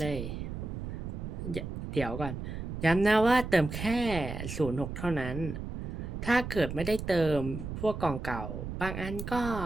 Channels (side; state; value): right; noise; rumble, 6 dB below the sound